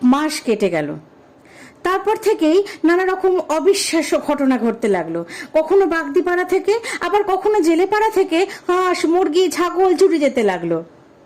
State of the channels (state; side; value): identical; both; correlation 1.00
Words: মাস কেটে গেল। তারপর থেকেই নানা রকম অবিশ্বাস্য ঘটনা ঘটতে লাগলো। কখনো বাগদিপাড়া থেকে, আবার কখনো জেলেপাড়া থেকে হাঁস, মুরগি, ছাগল চুরি যেতে লাগলো।